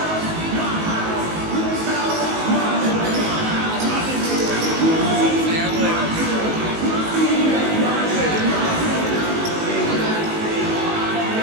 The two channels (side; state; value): left; late; 19 ms